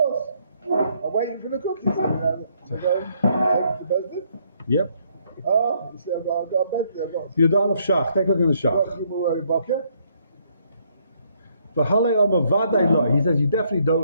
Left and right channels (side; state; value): both; inverted; correlation -0.69